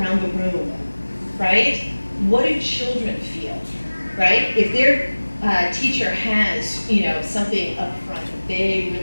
the room, right? What do children feel, right? If their teacher has, you know, something up front that they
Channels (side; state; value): both; inverted; correlation -1.00